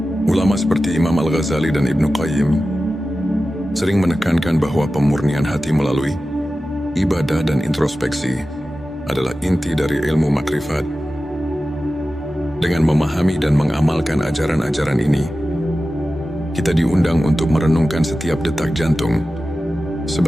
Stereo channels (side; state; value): both; normal; correlation 0.94